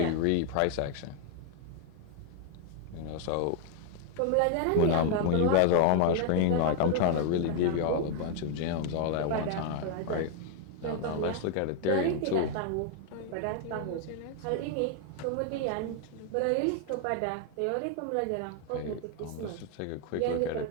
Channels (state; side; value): different; both; correlation 0.01